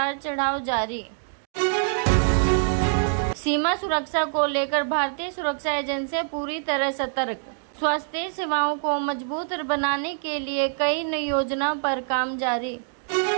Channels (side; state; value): left; silent; digital silence